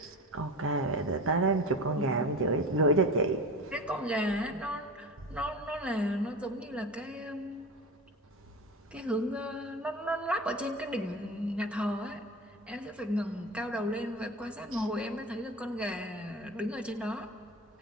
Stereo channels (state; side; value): normal; both; correlation 0.31